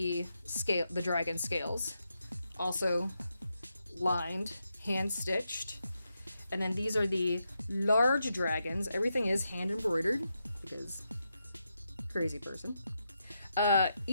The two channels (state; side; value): inverted; both; correlation -0.84